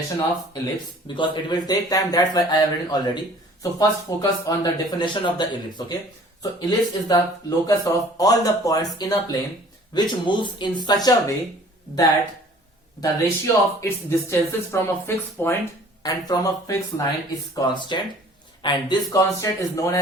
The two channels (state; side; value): normal; both; correlation 0.51